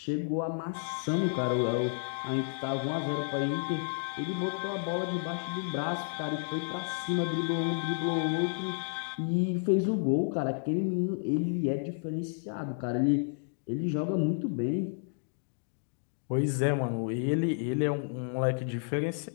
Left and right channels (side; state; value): right; silent; digital silence